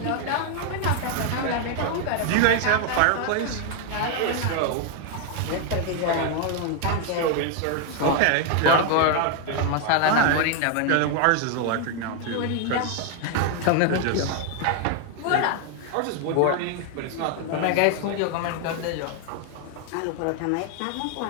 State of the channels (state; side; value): different; both; correlation 0.00